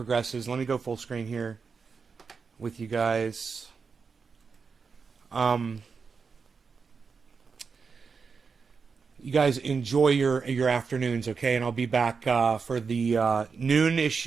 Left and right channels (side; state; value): left; quieter; 5.3 dB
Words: Let me go full screen here with you guys. You guys enjoy your afternoons, okay? And I'll be back for the